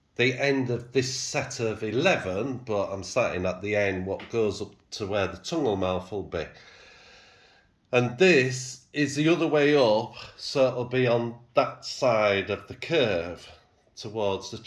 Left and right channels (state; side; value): identical; both; correlation 1.00